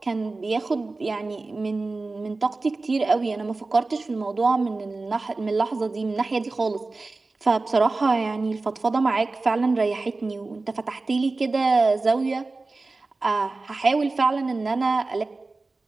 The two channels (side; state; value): left; quieter; 3.5 dB